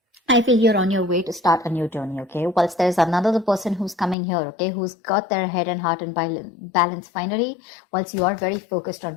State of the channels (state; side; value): drops out; right; at 4.2 s